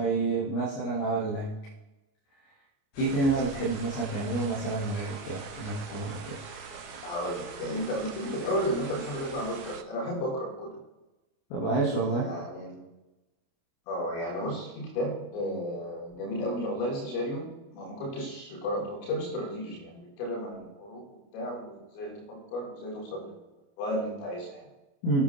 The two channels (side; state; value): right; late; 29 ms